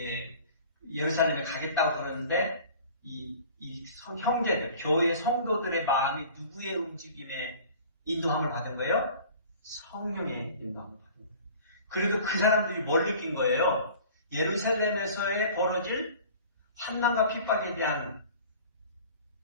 예루살렘에 가겠다고 그러는데 이 형제들, 교회 성도들의 마음이 누구의 움직임에 인도함을 받은 거예요? 성령의 인도함을 받은 거예요. 그래도 그 사람들이 뭘 느낀 거예요? 예루살렘에서의 벌어질 환난과 핍박에 대한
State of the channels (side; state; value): both; inverted; correlation -0.45